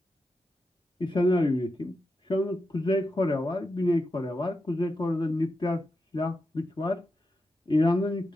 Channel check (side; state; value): both; normal; correlation 0.88